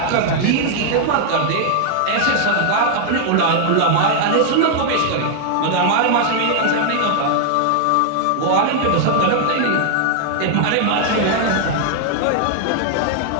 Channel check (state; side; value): different; both; correlation 0.00